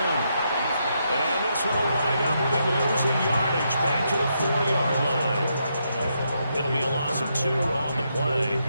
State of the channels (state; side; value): inverted; both; correlation -0.80